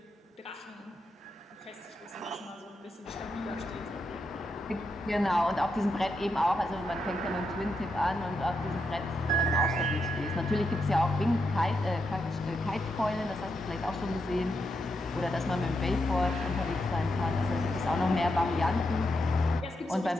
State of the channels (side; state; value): both; normal; correlation 0.83